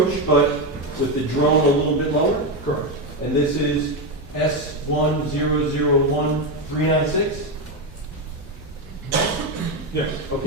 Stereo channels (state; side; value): normal; both; correlation 0.10